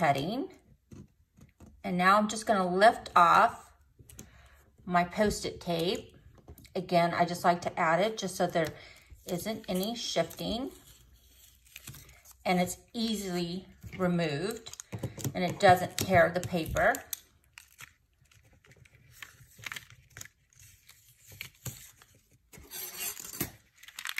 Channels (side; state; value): both; identical; correlation 1.00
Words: And now I'm just gonna lift off my Post-it tape. Again, I just like to add it just so there isn't any shifting. And it's easily removed and it doesn't tear the paper.